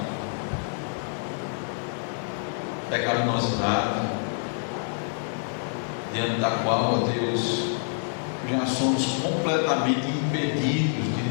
pecaminosidade, diante da qual, ó Deus, já somos completamente impedidos de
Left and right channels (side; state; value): right; silent; 60 dB below the other